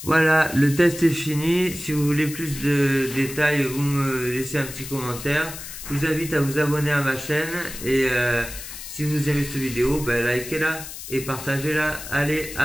Voilà, le test est fini. Si vous voulez plus de détails, vous me laissez un petit commentaire. Je vous invite à vous abonner à ma chaîne. Et si vous aimez cette vidéo, ben likez-la et partagez-la. Allez,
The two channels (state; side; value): noise; left; hiss, 11 dB below the sound